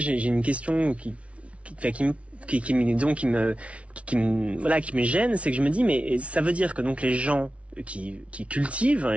une question qui me gêne, c'est que je me dis, mais ça veut dire que donc les gens qui cultivent,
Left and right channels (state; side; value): late; left; 0.063 ms